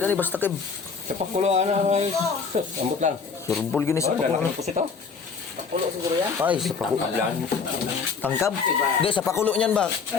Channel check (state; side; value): quieter; right; 5.5 dB